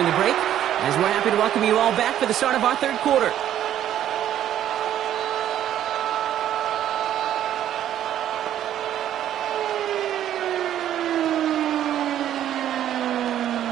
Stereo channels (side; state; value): left; quieter; 11.2 dB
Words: the break, as we're happy to welcome you all back for the start of our 3rd quarter.